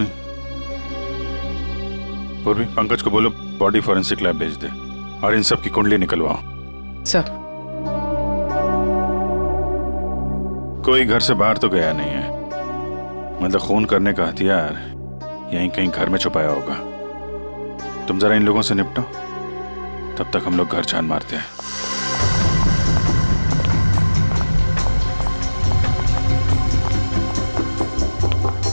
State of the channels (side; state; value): both; inverted; correlation -1.00